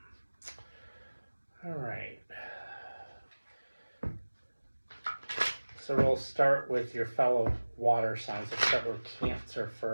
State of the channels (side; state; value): both; inverted; correlation -1.00